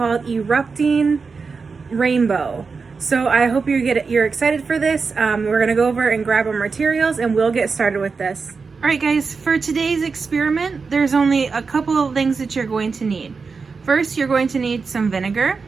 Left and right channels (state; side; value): quieter; left; 4.8 dB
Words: Erupting Rainbow. So I hope you're excited for this. We're gonna go over and grab our materials and we'll get started with this. Alright guys, for today's experiment, there's only a couple of things that you're going to need. First, you're going to need some vinegar.